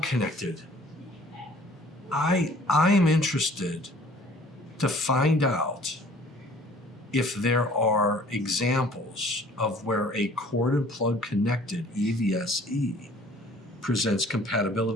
connected, I am interested to find out if there are examples of where a cord and plug connected EVSE presents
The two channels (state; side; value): normal; both; correlation 0.53